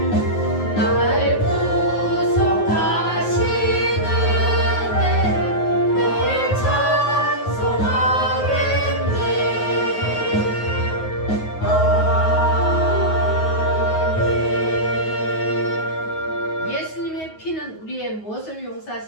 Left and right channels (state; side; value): late; right; 9.4 ms